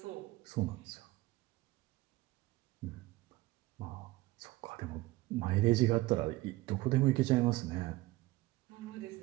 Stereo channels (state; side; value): quieter; left; 19.3 dB